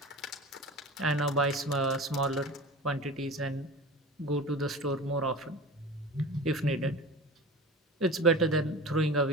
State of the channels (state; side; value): normal; both; correlation 0.35